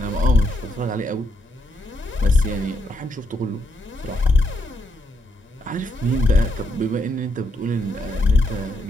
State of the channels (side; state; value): both; normal; correlation 0.78